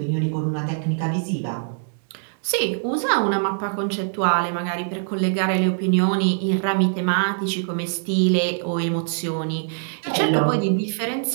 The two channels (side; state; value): left; silent; 63 dB below the other